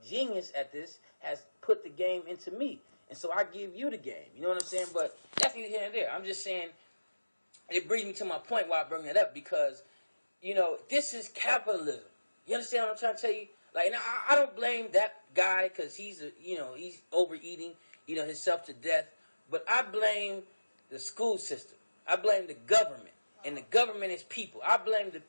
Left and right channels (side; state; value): both; inverted; correlation -1.00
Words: at this, has put the game into me. And so I give you the game. You know what I'm saying? But that's neither here and there. I'm just saying, it brings me to my point why I bring that up, because, you know, this is capitalism. You understand what I'm trying to tell you? Like, now, I don't blame that guy because he's overeating, you know, himself to death. But I blame the school system. I blame the government. And the government is people. I blame the